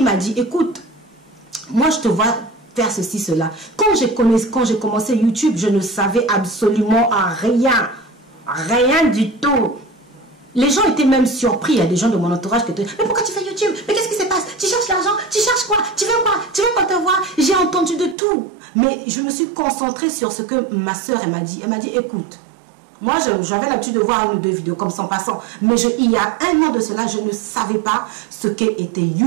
m'a dit, écoute, moi je te vois faire ceci, cela. Quand j'ai commencé YouTube, je ne savais absolument rien. Rien du tout. Les gens étaient même surpris. Il y a des gens de mon entourage qui étaient, mais pourquoi tu fais YouTube? Mais qu'est-ce qui se passe? Tu cherches l'argent? Tu cherches quoi? Tu veux quoi? Tu veux qu'on te voit? J'ai entendu de tout. Mais je me suis concentrée sur ce que ma soeur m'a dit. Elle m'a dit, écoute, moi, j'avais l'habitude de voir une ou deux vidéos comme ça en passant. Mais il y a un an de cela, je ne savais pas ce qu'était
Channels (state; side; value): drops out; left; at 18.2 s